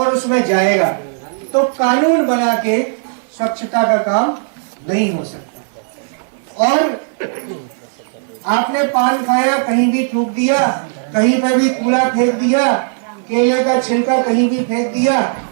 उसमें जाएगा, तो कानून बना के स्वच्छता का काम नहीं हो सकता। और आपने पान खाया, कहीं भी थूक दिया, कहीं पर भी कूड़ा फेंक दिया, केले का छिलका कहीं भी फेंक दिया,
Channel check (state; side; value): silent; left; 68 dB below the other